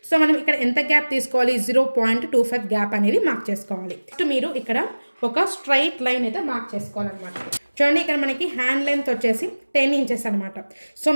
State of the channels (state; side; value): inverted; both; correlation -1.00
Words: సో మనం ఇక్కడ ఎంత గ్యాప్ తీసుకోవాలి, 0.25 గ్యాప్ అనేది మార్క్ చేసుకోవాలి. నెక్స్ట్ మీరు ఇక్కడ ఒక స్ట్రైట్ లైన్ అయితే మార్క్ చేసుకోవాలన్నమాట. చూడండి, ఇక్కడ మనకి హ్యాండ్ లెంత్ వచ్చేసి 10 ఇంచెస్ అనమాట. సో